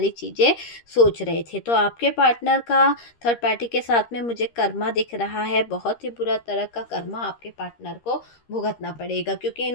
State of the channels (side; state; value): right; late; 13 ms